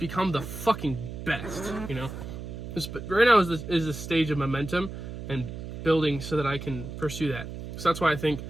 the fucking best, you know. Right now is the stage of momentum and building so that I can pursue that. So that's why I think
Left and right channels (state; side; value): noise; right; hum, 9 dB below the sound